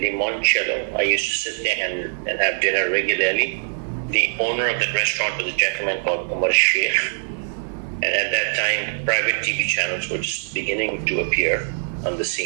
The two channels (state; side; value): silent; left; digital silence